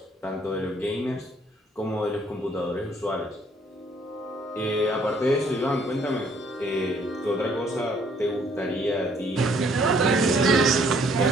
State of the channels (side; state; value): both; normal; correlation 0.63